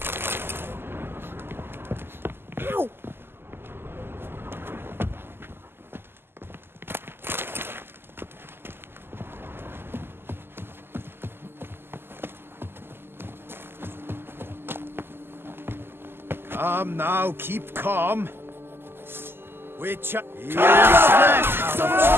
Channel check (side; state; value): left; late; 0.11 ms